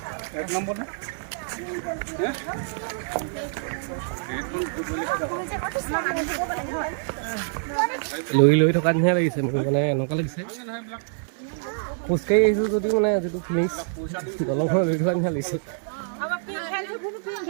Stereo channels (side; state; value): left; silent; digital silence